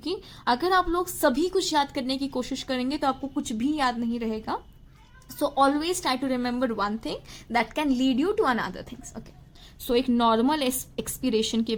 अगर आप लोग सभी कुछ याद करने की कोशिश करेंगे तो आपको कुछ भी याद नहीं रहेगा. So always try to remember one thing that can lead you to another things, okay. So एक नॉर्मल एक्सपिरेशन के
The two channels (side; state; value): both; identical; correlation 1.00